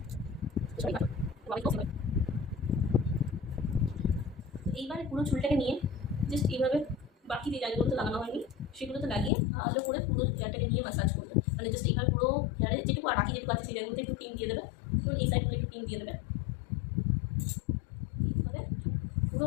এইবারে পুরো চুলটাকে নিয়ে জাস্ট এইভাবে বাকি যে জায়গাগুলোতে লাগানো হয়নি সেগুলোতে লাগিয়ে ভালো করে পুরো হেয়ারটাকে নিয়ে ম্যাসাজ করবে। জাস্ট এইভাবে পুরো হেয়ারে যেটুকু আর বাকি যেটুকু আছে সেই জায়গাগুলোতে একটু ক্রিম দিয়ে দেবে, এবং এই সাইডগুলো একটু ক্রিম দিয়ে দেবে। এইভাবে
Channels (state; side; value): drops out; right; at 9.3 s